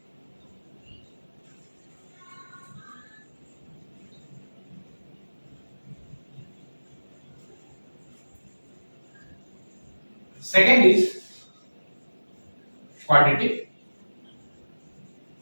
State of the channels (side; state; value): both; inverted; correlation -1.00